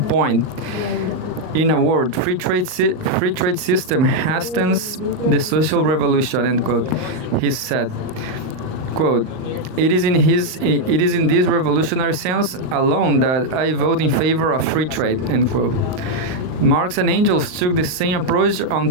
point. In a word, free trade system hastens the social revolution, end quote. He said, quote, it is in this revolutionary sense alone that I vote in favor of free trade, end quote. Marx and Engels took the same approach on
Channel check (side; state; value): left; late; 39 ms